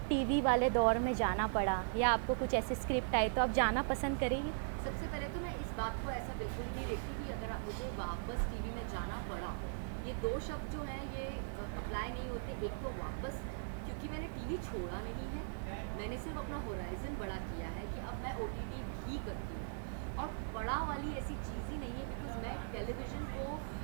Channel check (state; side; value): silent; left; 52 dB below the other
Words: टीवी वाले दौर में जाना पड़ा या आपको कुछ ऐसे स्क्रिप्ट आए तो आप जाना पसंद करेंगी? सबसे पहले तो मैं इस बात को ऐसा बिल्कुल ही नहीं देखती कि अगर मुझे वापस टीवी में जाना पड़ा, ये दो शब्द जो हैं ये अप्लाई नहीं होते। एक तो वापस, क्योंकि मैंने टीवी छोड़ा नहीं है, मैंने सिर्फ अपना होराइज़न बड़ा किया है कि अब मैं ओटीटी भी करती हूँ। और पड़ा वाली ऐसी चीज़ ही नहीं है, बिकॉज़ मैं टेलीविज़न को